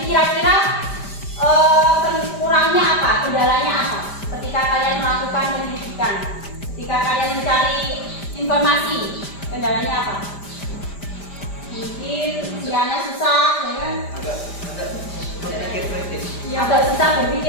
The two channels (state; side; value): late; right; 5.0 ms